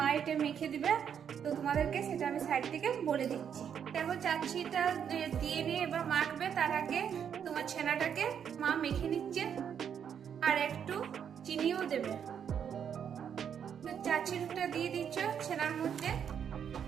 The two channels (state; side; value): quieter; left; 8.1 dB